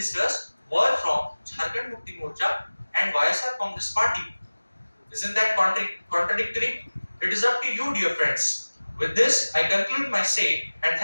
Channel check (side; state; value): both; inverted; correlation -1.00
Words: were from Jharkhand Mukti Morcha and YSR Congress Party. Isn't that contradictory? It is up to you, dear friends. With this, I conclude my say and